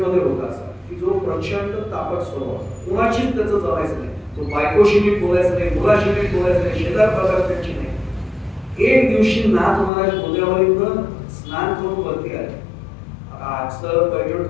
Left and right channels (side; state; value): right; drops out; at 9.9 s